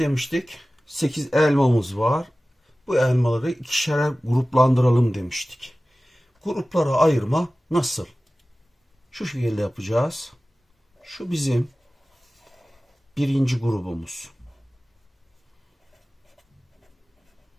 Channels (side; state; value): both; normal; correlation 0.97